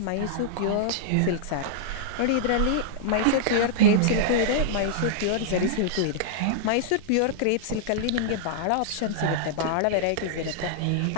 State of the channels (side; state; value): both; different; correlation -0.02